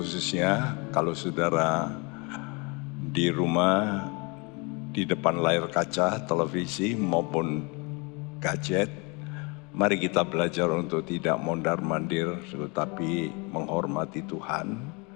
kalau saudara di rumah, di depan layar kaca, televisi maupun gadget, mari kita belajar untuk tidak mondar-mandir, tetapi menghormati Tuhan.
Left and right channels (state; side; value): quieter; right; 30.1 dB